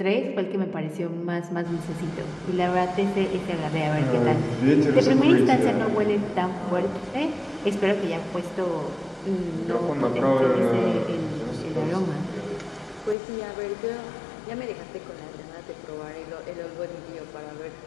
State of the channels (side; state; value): right; drops out; at 13.2 s